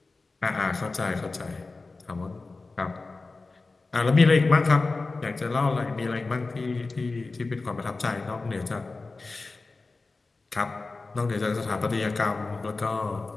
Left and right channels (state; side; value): quieter; right; 3.7 dB